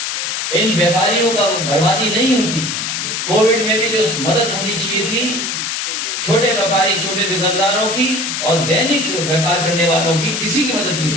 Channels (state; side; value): noise; left; hiss, 2 dB below the sound